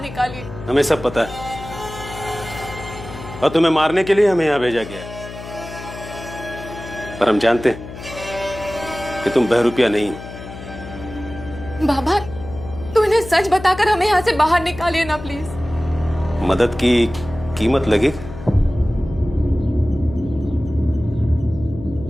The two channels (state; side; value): noise; left; hum, 12 dB below the sound